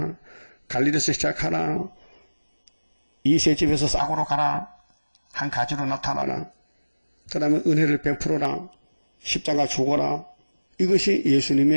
갈릴리에서 시작하라. 이새집에서 싹으로 가라. 한 가지로 나타나라. 그 다음에 은혜를 베풀어라. 십자가 죽어라. 이것이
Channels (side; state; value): both; inverted; correlation -1.00